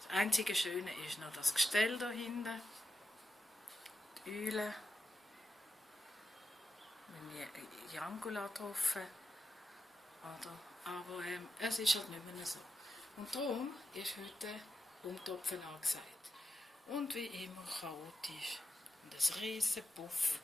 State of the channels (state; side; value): normal; both; correlation 0.88